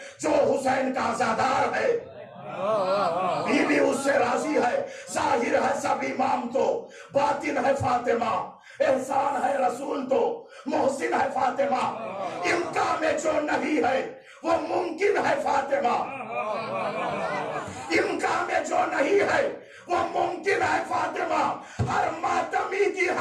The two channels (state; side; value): identical; both; correlation 1.00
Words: جو حسین کا عزادار ہے بی اس سے راضی ہے. ظاہر ہے سب امام تو, باطن ہے فاطمہ, احسان ہے رسول تو, محسن ہے فاطمہ, امکان میں جو نہیں ہے وہ ممکن ہے فاطمہ, امکان میں جو نہیں ہے وہ ممکن ہے فاطمہ, ہر ماتمی کی